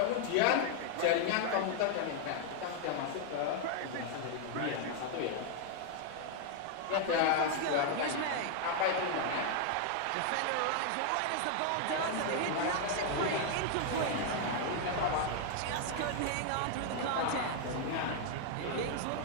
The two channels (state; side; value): different; both; correlation 0.00